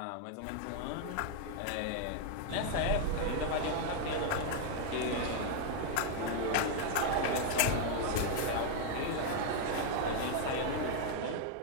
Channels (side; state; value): both; different; correlation 0.00